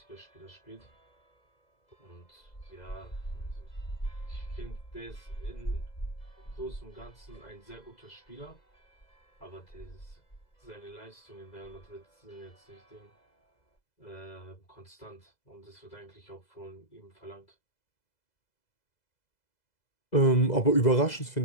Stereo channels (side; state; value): right; late; 2.0 ms